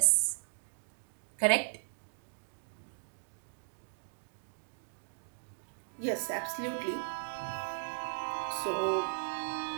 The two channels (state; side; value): silent; left; digital silence